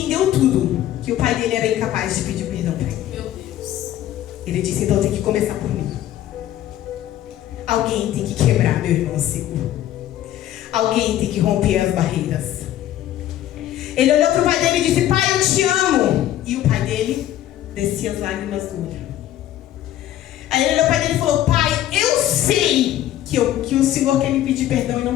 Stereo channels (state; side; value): quieter; right; 12.7 dB